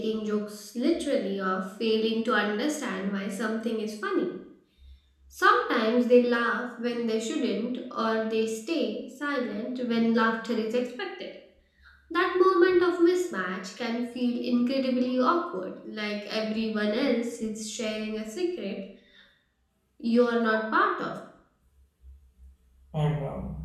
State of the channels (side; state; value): both; identical; correlation 1.00